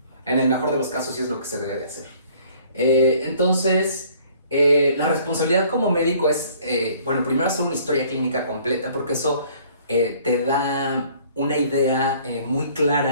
En el mejor de los casos sí es lo que se debe de hacer. Entonces, la responsabilidad como médico es, primero hacer una historia clínica completa, porque eso te da una idea muy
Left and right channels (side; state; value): both; inverted; correlation -0.57